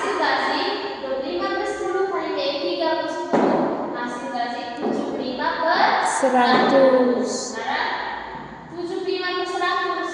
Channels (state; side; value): identical; both; correlation 1.00